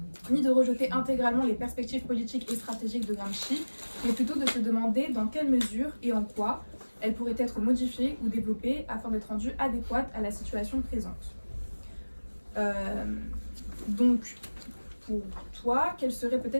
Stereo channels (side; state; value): both; inverted; correlation -1.00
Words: ni de rejeter intégralement les perspectives politiques et stratégiques de Gramsci, mais plutôt de se demander dans quelle mesure et en quoi elles pourraient être modifiées ou développées afin d'être rendues adéquates à la situation présente. Donc, pour toi, quelles seraient